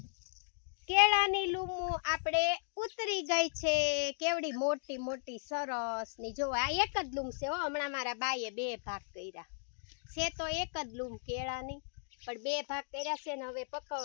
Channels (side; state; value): right; silent; digital silence